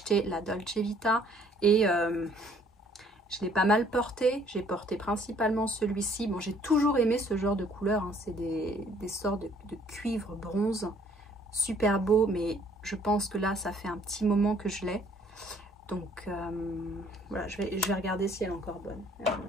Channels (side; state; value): both; normal; correlation 0.60